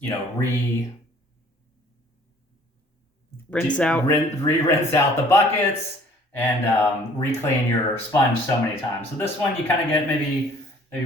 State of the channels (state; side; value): normal; both; correlation 0.55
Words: out the buckets and re-clean your sponge so many times. So this one you kind of get maybe